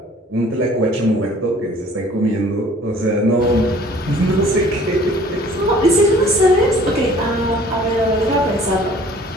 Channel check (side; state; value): both; normal; correlation 0.52